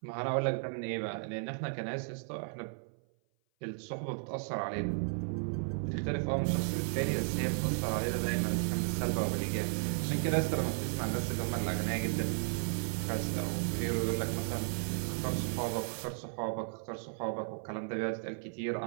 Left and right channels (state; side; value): silent; left; 55 dB below the other